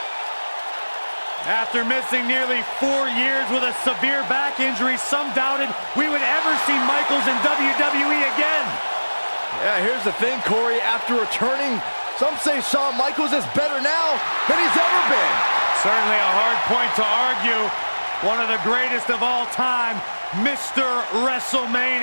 After missing nearly 4 years with a severe back injury, some doubted we would ever see Michaels in WWE again. Yeah, here's the thing, Corey. After returning, some say Shawn Michaels is better now than he's ever been. Certainly a hard point to argue. One of the greatest of all time, Mr.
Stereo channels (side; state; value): both; inverted; correlation -1.00